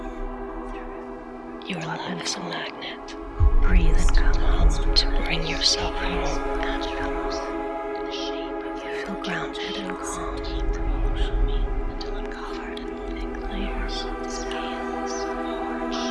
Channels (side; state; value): both; identical; correlation 1.00